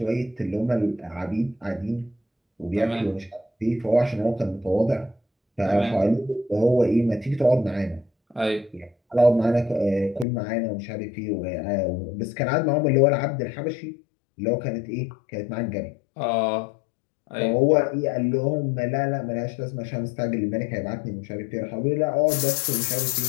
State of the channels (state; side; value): drops out; right; at 10.2 s